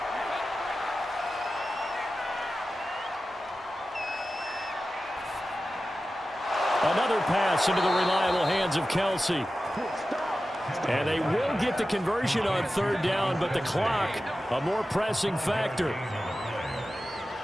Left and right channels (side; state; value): both; normal; correlation 0.94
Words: Another pass into the reliable hands of Kelsey. And they will get the conversion on 3rd down, but the clock, a more pressing factor.